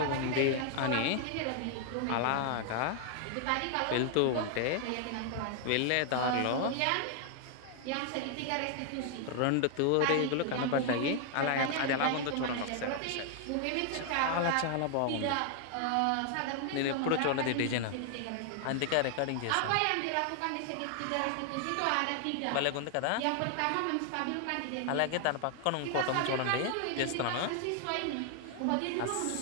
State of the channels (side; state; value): both; different; correlation 0.00